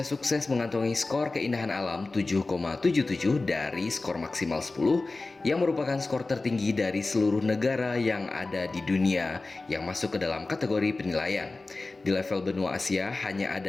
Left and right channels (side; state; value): right; quieter; 3.4 dB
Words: sukses mengantongi skor keindahan alam 7,77 dari skor maksimal 10 yang merupakan skor tertinggi dari seluruh negara yang ada di dunia yang masuk ke dalam kategori penilaian. Di level benua Asia hanya